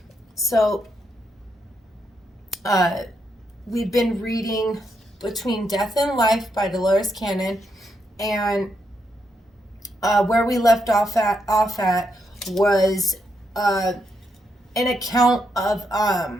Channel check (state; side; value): normal; both; correlation 0.80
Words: So, we've been reading Between Death and Life by Dolores Cannon, and where we left off at was an account of